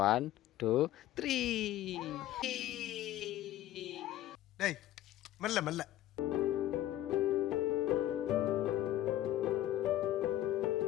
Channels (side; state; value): right; quieter; 13.7 dB